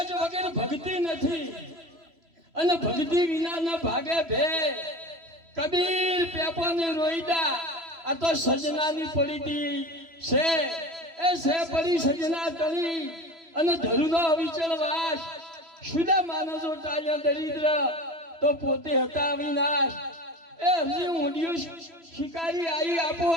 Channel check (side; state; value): left; late; 3.0 ms